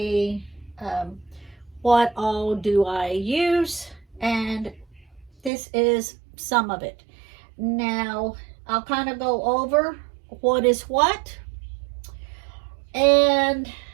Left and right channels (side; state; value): left; drops out; at 5.5 s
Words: what all do I use, and this is some of it. Now, I'll kind of go over what is what, and